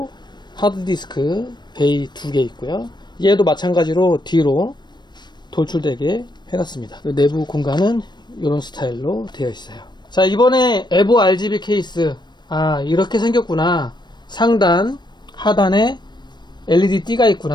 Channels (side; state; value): right; late; 0.21 ms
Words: 하드디스크 베이 2개 있고요. 얘도 마찬가지로 뒤로 돌출되게 해놨습니다. 내부 공간은 이런 스타일로 되어 있어요. 자, 이번에 에보 RGB 케이스, 이렇게 생겼구나, 상단 하단에 LED 띠가